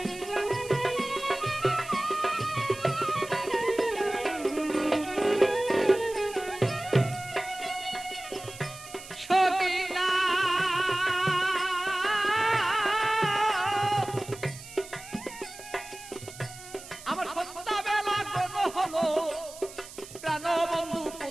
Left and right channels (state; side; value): noise; right; hiss, 16 dB below the sound